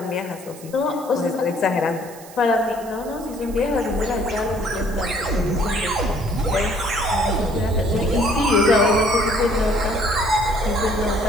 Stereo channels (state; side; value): noise; right; hiss, 19 dB below the sound